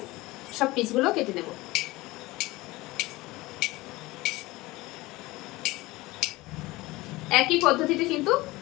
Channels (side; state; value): right; quieter; 20.3 dB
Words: সব পিসগুলো কেটে নেব। একই পদ্ধতিতে কিন্তু